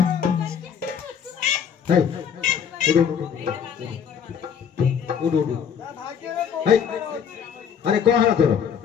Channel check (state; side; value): quieter; right; 7.7 dB